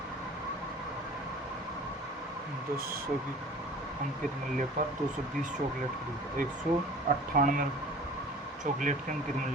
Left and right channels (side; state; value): both; normal; correlation 0.44